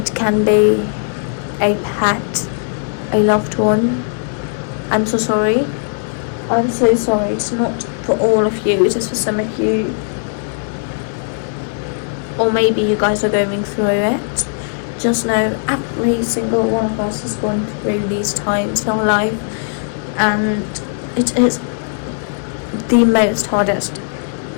can be a pet, a loved one. I'm so sorry. I'm so sorry. It's not for all of you, it's just for some of you. Or maybe you guys are going through it. Just know every single one of us has gone through these times in our life, and it is the most hardest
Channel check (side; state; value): right; silent; digital silence